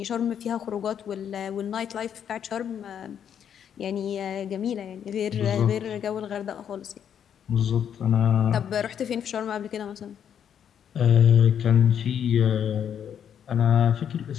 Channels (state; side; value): quieter; right; 8.7 dB